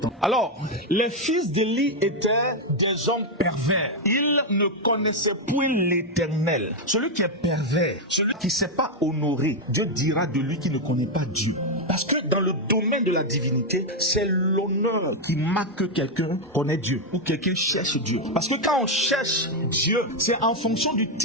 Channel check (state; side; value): normal; both; correlation 0.03